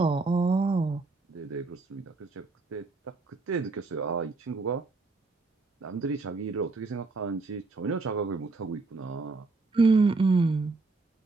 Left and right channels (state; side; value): quieter; left; 3.7 dB